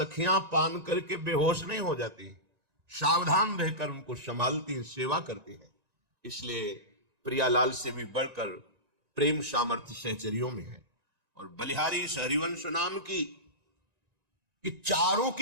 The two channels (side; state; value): left; late; 1.9 ms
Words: पान करके बेहोश नहीं हो जाती, सावधान रहकर उनको संभालती है, सेवा करती है। इसलिए प्रियालाल से भी बढ़कर प्रेम सामर्थ्य सहचरियों में है। और बलिहारी इस हरिवंश नाम की कि चारों